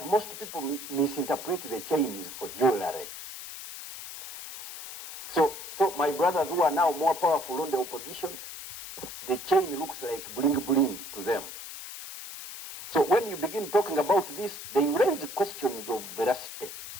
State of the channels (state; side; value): noise; left; hiss, 11 dB below the sound